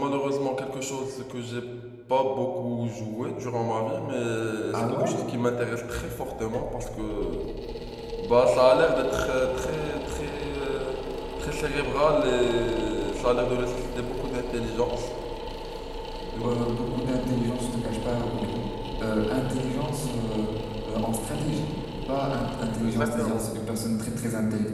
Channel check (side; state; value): both; identical; correlation 1.00